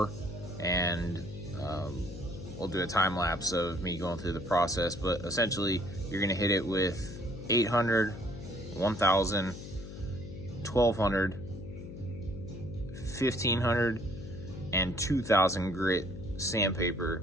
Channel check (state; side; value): noise; left; hum, 11 dB below the sound